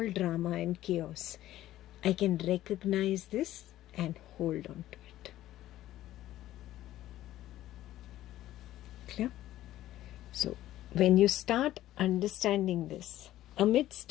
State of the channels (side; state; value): right; quieter; 14.2 dB